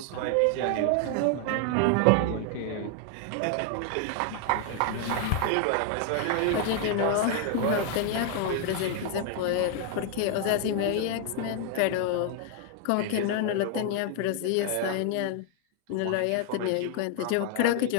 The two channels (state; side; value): different; both; correlation 0.00